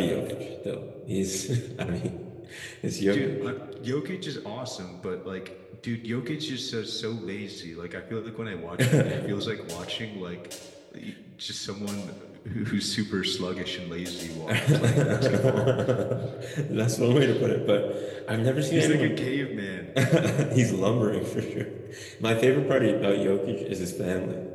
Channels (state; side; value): identical; both; correlation 1.00